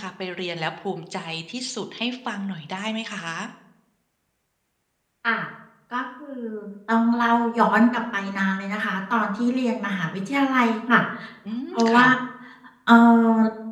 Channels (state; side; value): identical; both; correlation 1.00